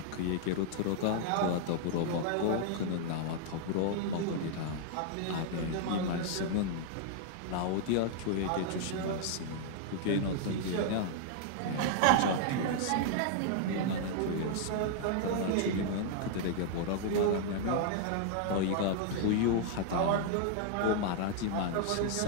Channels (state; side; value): different; both; correlation -0.01